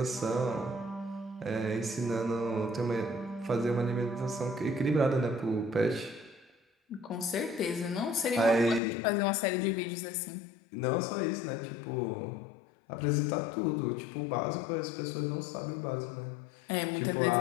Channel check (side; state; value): right; drops out; at 8.8 s